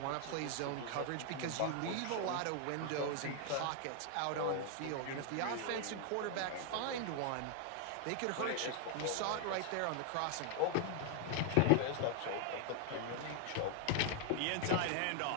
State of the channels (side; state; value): both; different; correlation 0.00